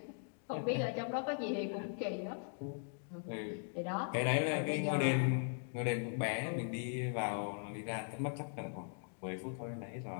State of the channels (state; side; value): silent; right; digital silence